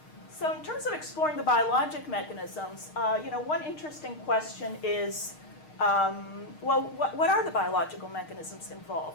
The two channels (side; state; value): right; late; 6.5 ms